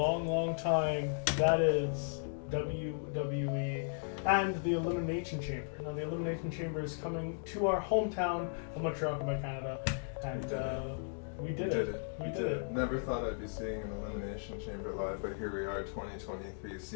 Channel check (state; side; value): silent; right; digital silence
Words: time. That is WWE and the Elimination Chamber. Now the Elimination Chamber is coming to our hometown of Montreal, Quebec, Canada, and we did it. Never thought I'd be seeing an Elimination Chamber live, but here we are, 2023,